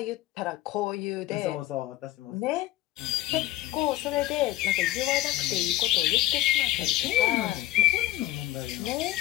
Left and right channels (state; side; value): quieter; right; 15.4 dB